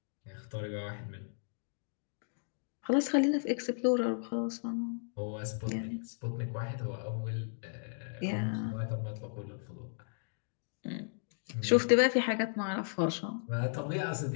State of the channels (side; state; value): right; silent; digital silence